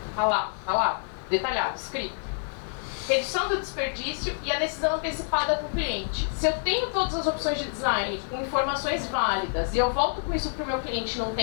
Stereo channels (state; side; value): silent; right; digital silence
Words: Tá lá, detalhado, escrito. Redução do desperdício e a decisão antecipada com o cliente. Se eu tenho todas as opções de design com informações válidas e eu volto com isso para o meu cliente num